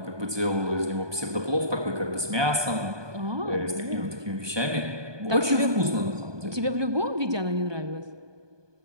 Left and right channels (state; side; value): late; left; 1.2 ms